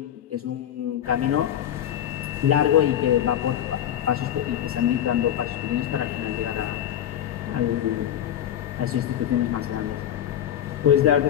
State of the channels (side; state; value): right; quieter; 10.7 dB